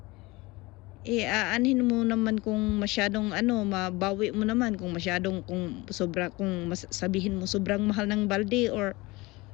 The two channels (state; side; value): quieter; right; 22.6 dB